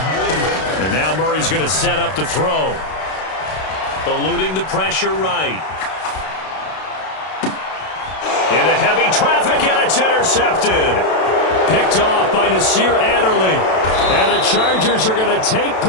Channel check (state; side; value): late; right; 32 ms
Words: And now Murray's going to set up the throw. Eluding the pressure right. Into heavy traffic, and it's intercepted. Picked off by Nasir Adderley. And the Chargers are going to take